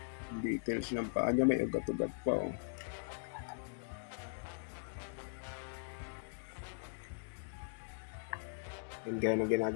Details ng paa niya, may ugat-ugat pa. And gaya ng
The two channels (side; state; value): right; silent; digital silence